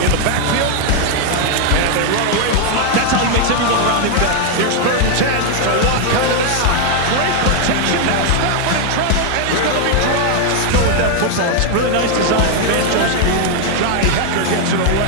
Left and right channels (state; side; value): different; both; correlation 0.00